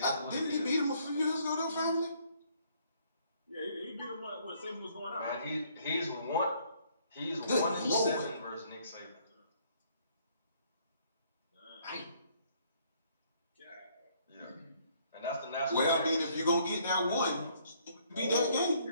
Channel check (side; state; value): both; inverted; correlation -0.64